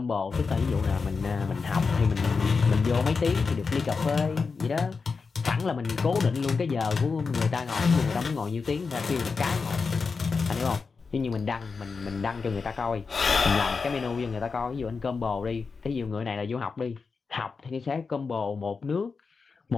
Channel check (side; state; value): right; quieter; 4.8 dB